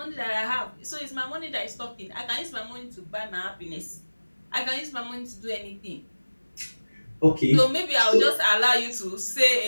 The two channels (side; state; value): both; inverted; correlation -1.00